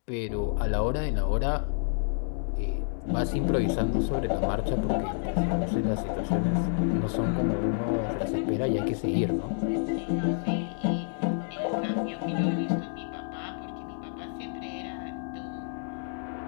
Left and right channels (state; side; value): silent; right; digital silence